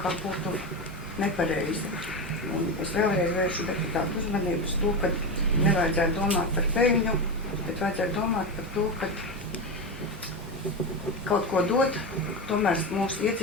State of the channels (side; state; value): both; normal; correlation 0.17